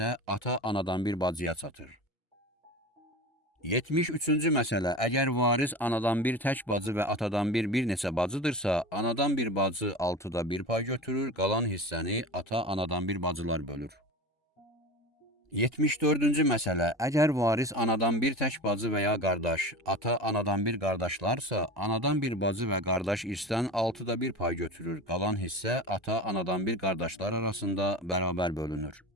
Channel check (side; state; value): both; normal; correlation 0.31